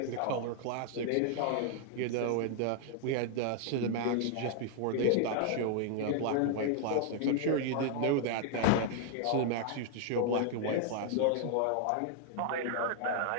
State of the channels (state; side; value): different; both; correlation 0.00